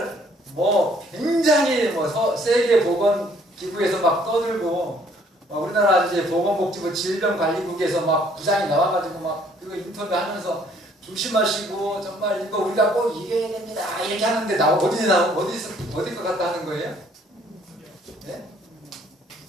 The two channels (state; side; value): normal; both; correlation 0.62